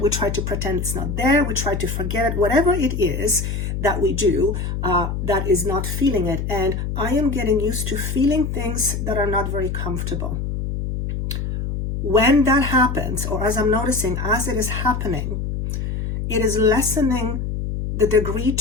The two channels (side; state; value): left; noise; hum, 3 dB below the sound